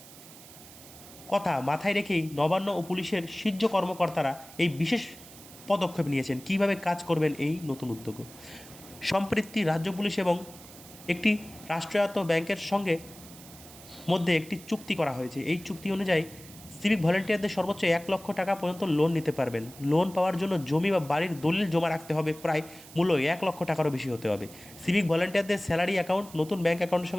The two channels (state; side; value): noise; right; hiss, 19 dB below the sound